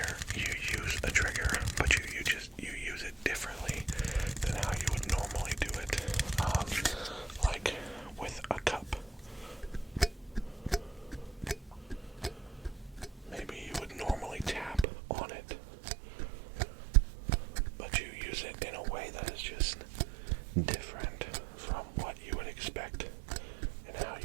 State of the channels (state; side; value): drops out; left; at 14.9 s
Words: you use a trigger, but you use it differently than how you would normally do it. Like with a cup. Maybe you would normally tap on it, but you use it in a way that is just different from what you would expect and how